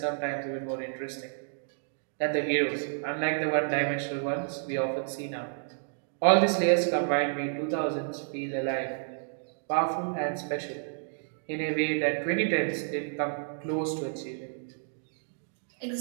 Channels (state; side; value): silent; left; digital silence